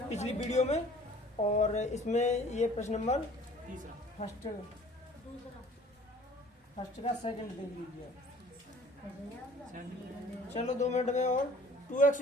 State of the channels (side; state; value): both; normal; correlation 0.50